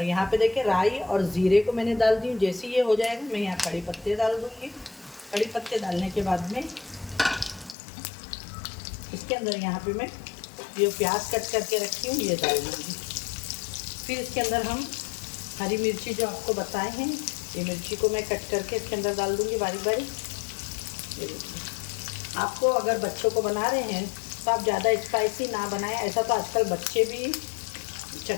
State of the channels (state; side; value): drops out; right; at 7.8 s